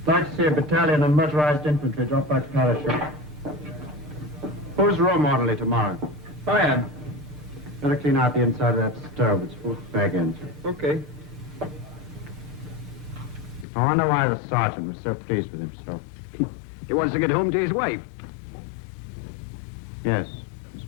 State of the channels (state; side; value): drops out; right; at 13.7 s